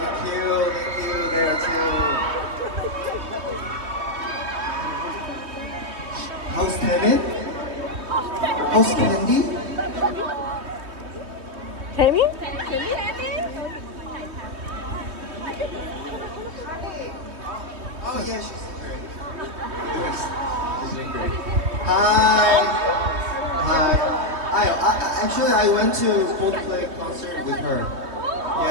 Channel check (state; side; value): late; left; 3.2 ms